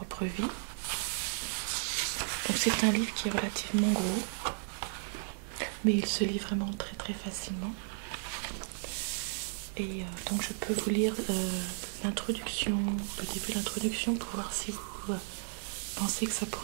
vie. Donc c'est un livre qui est relativement gros, mais il se lit vraiment très très facilement. Et donc je peux vous lire l'introduction, le début de l'introduction, pour voir si vous pensez que ça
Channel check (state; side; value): silent; left; digital silence